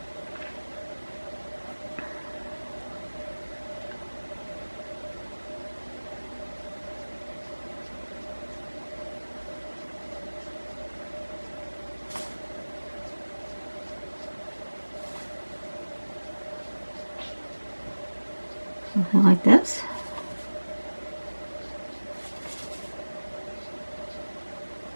something like this.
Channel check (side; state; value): both; inverted; correlation -1.00